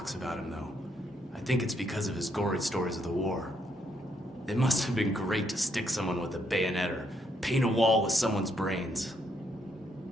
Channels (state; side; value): normal; both; correlation 0.74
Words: about him, though. I think it's because of his gory stories of the war. It must have been great to stick someone with a bayonet or paint a wall with someone's brains.